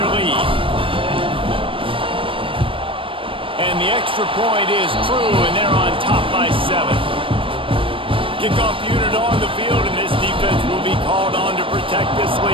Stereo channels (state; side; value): late; left; 0.25 ms